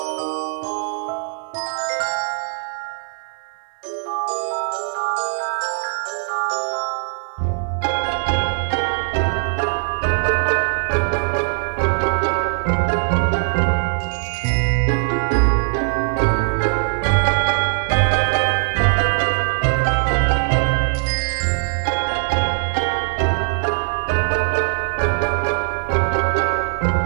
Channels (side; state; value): left; silent; 55 dB below the other